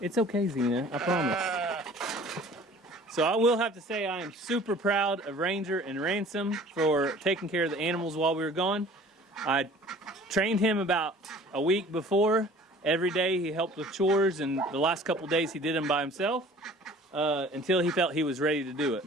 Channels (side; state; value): both; normal; correlation 0.48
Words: okay, Zena, I promise. So I will have to say I am super proud of Ranger and Ransom for taking care of the animals while we were gone. I trained him about a week before. Every day he helped with chores, and the last couple days he did them by himself until he felt he was ready to do it.